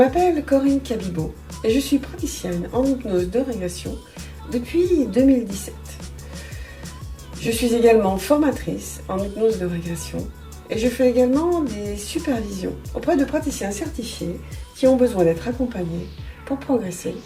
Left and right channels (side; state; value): both; identical; correlation 1.00